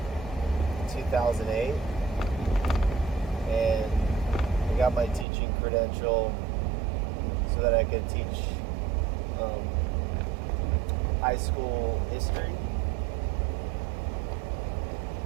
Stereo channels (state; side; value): drops out; left; at 5.2 s